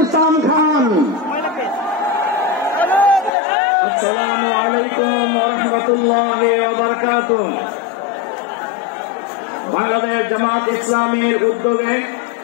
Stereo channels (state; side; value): drops out; right; at 3.3 s